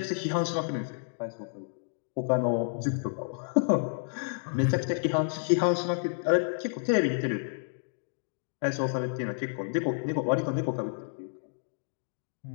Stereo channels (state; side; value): silent; right; digital silence